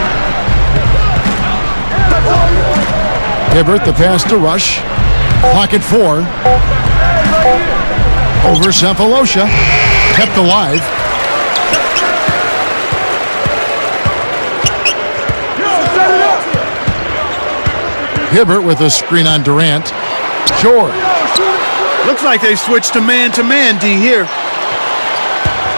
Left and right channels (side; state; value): both; inverted; correlation -1.00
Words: Hibbert, the pass to Rush. Clock at 4. Over Cephalosha. Kept alive. Hibbert with a screen on Durant. George. Looks like they switched to man-to-man, D, here.